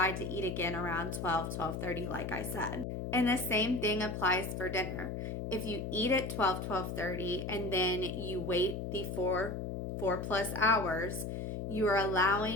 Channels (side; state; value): left; noise; hum, 4 dB below the sound